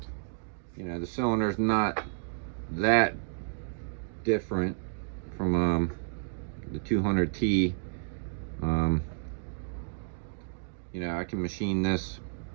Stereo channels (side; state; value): left; silent; digital silence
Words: The cylinder's not that different from the 200T. I can machine this